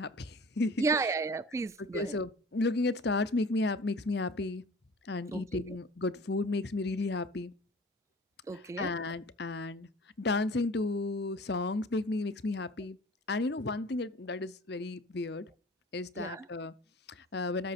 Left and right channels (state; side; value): normal; both; correlation 0.43